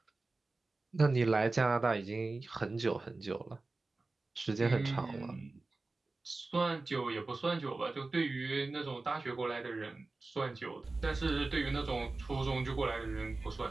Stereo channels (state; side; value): quieter; left; 3.4 dB